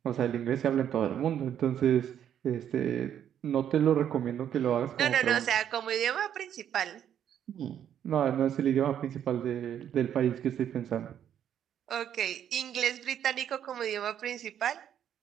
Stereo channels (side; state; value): left; quieter; 9.7 dB